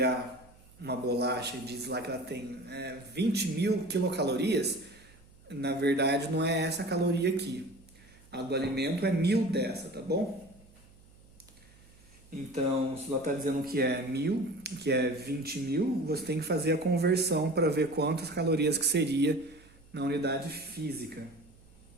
uma bolacha e diz lá que ela tem 20.000 quilocalorias, na verdade, não é essa caloria aqui. A do alimento é 1000 dessa, tá bom? Então, se ela está dizendo que é 1000, que é 20.000, você tem que fazer a conversão para ver quantas calorias que seria na unidade física.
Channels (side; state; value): right; noise; hum, 26 dB below the sound